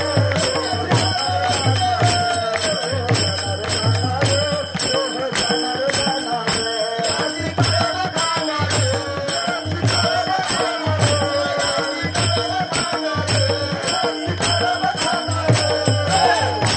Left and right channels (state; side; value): identical; both; correlation 1.00